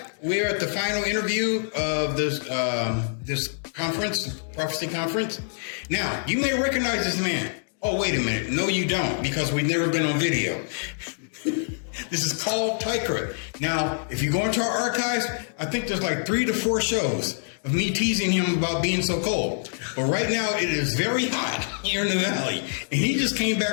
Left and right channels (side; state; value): right; silent; digital silence